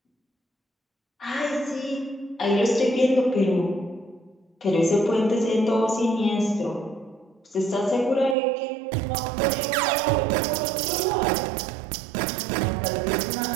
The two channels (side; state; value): left; drops out; at 8.3 s